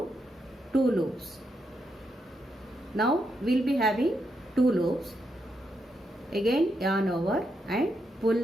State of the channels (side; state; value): both; normal; correlation 0.81